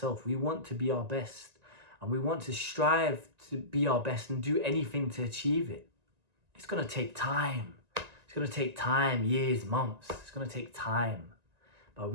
we want to be our best, and we want to strive to be our best and do anything to achieve it. It's going to take time. It's going to take time, years, months. It's going to take time. But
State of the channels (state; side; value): late; left; 1.9 ms